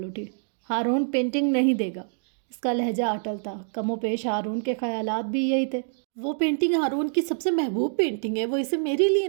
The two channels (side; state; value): left; silent; digital silence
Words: اٹھی۔ ہارون پینٹنگ نہیں دے گا۔ اس کا لہجہ اٹل تھا۔ کم و بیش ہارون کے خیالات بھی یہی تھے۔ وہ پینٹنگ ہارون کی سب سے محبوب پینٹنگ ہے، وہ اسے میرے لیے